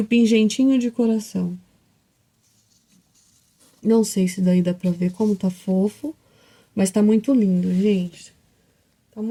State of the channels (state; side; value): identical; both; correlation 1.00